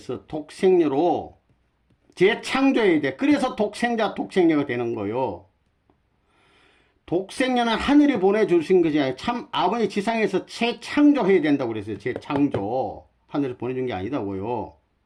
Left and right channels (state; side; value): identical; both; correlation 1.00